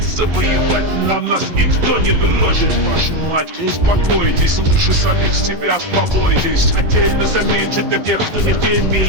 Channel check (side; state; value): left; late; 11 ms